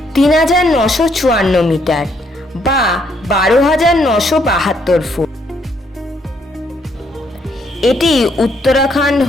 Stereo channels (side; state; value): both; normal; correlation 0.71